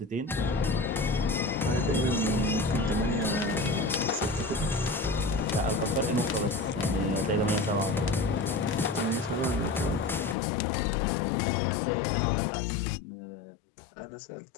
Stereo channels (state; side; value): drops out; right; at 10.4 s